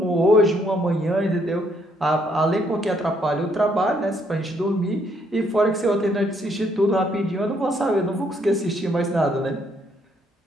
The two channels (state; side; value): normal; both; correlation 0.70